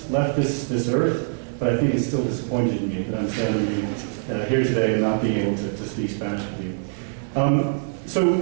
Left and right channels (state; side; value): silent; left; 63 dB below the other